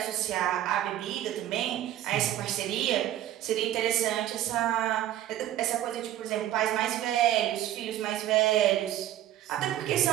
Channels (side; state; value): left; quieter; 12.7 dB